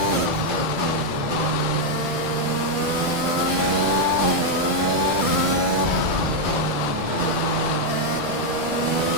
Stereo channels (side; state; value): left; late; 1.7 ms